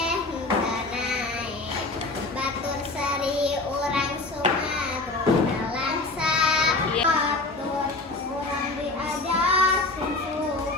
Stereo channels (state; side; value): quieter; right; 3.2 dB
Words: hentanae. Batur sari urang sumegruk nalangsa. Batur urang diajar sing